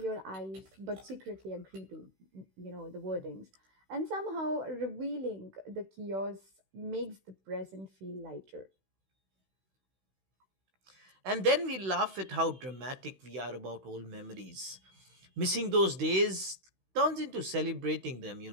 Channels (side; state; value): left; late; 16 ms